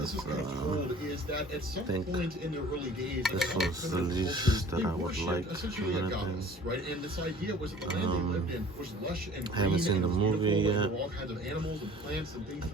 with? is kind of told is that at some point in the early days, This was the least that I would like. essentially a goddess, right? And this idea was that the land they lived in was lush and green. I haven't seen the movie yet. There were all kinds of animals and plants and things. I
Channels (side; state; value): both; normal; correlation 0.48